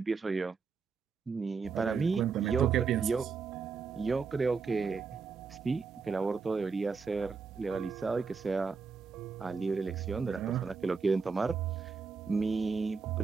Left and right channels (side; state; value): left; quieter; 5.2 dB